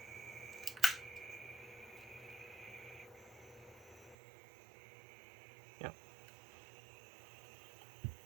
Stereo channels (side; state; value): left; drops out; at 4.2 s